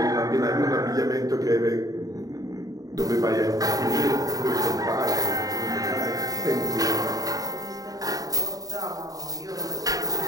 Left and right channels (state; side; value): late; left; 0.18 ms